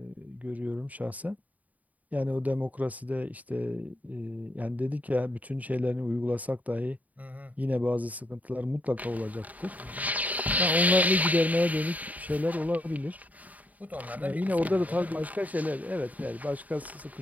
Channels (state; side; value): late; left; 0.074 ms